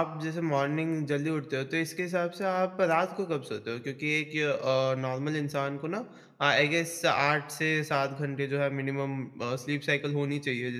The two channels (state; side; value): identical; both; correlation 1.00